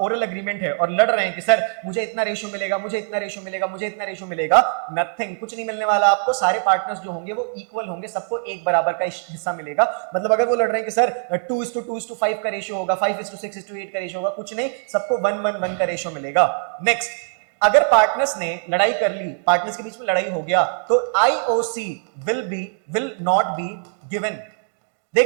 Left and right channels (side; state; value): left; silent; digital silence